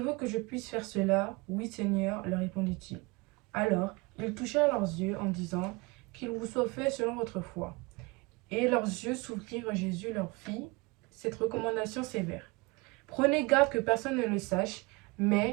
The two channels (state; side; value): quieter; left; 25.5 dB